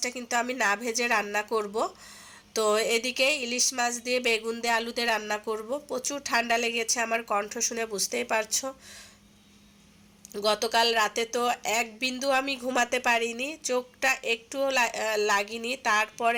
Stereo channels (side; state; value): both; identical; correlation 1.00